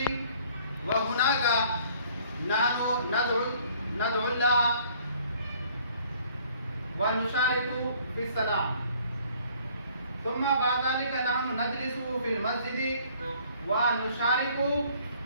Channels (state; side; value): inverted; both; correlation -0.58